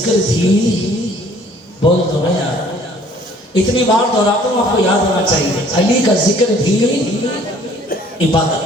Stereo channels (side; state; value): both; normal; correlation 0.56